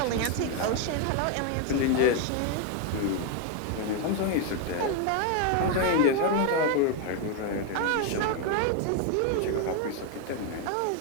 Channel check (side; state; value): both; different; correlation 0.01